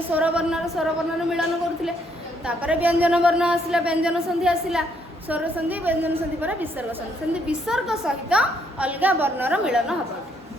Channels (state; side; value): normal; both; correlation 0.71